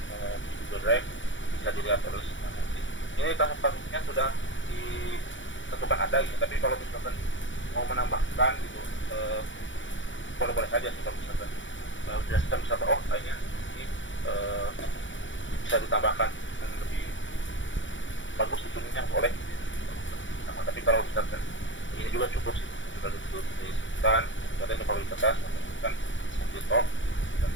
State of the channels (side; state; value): right; late; 0.55 ms